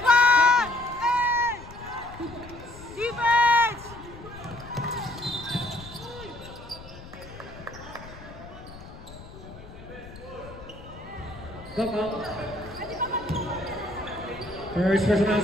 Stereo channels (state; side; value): noise; left; rumble, 16 dB below the sound